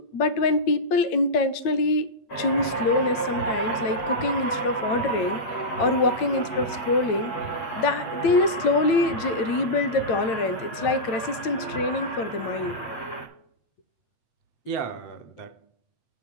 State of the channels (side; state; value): right; late; 8.9 ms